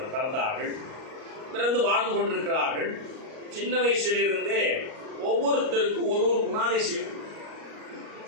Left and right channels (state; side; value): late; left; 38 ms